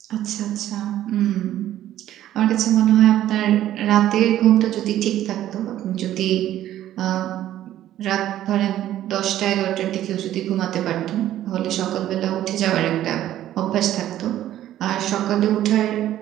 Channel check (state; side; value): quieter; left; 12.7 dB